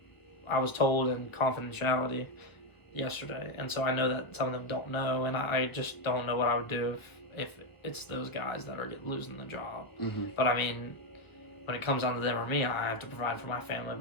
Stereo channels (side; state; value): right; late; 1.2 ms